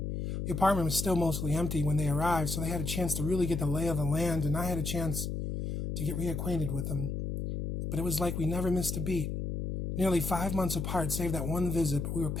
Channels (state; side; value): noise; left; hum, 3 dB below the sound